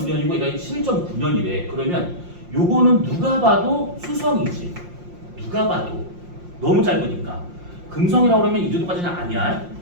얘가 11.9년이래. 그러면 요거는 누가 봐도 수성이지. 누가 봐도 너무 짧으니까. 금성이라고 그러면 이 정도까지는 아니야.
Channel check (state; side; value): late; left; 5.7 ms